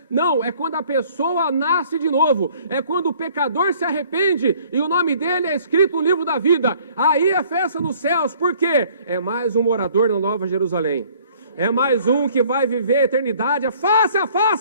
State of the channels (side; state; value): both; inverted; correlation -0.57